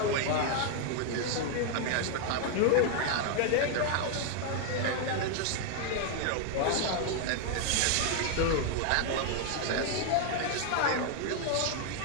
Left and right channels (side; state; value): both; different; correlation 0.00